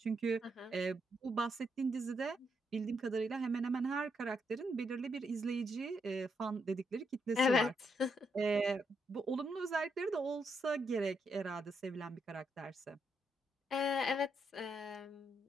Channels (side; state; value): both; normal; correlation 0.78